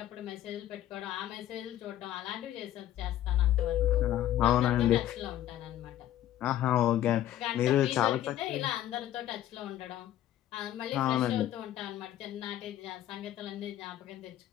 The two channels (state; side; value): quieter; right; 12.7 dB